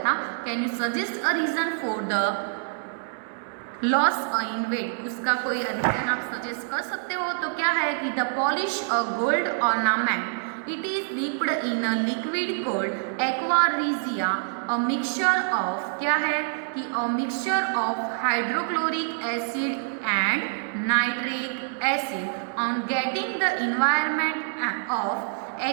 था. Can you suggest a reason for the loss in weight. उसका कोई रीजन आप सजेस्ट कर सकते हो. तो क्या है कि the polish a gold ornament it is dipped in a liquid cold aqua regia a mixture of, क्या है कि a mixture of hydrochloric acid and nitric acid. On getting the environment of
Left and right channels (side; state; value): left; silent; digital silence